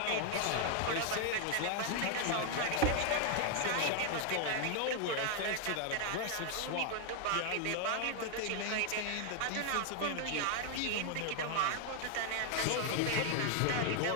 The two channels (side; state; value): both; different; correlation 0.00